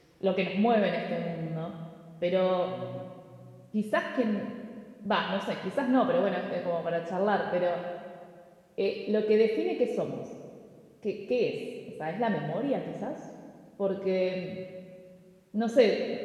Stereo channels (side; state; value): both; identical; correlation 1.00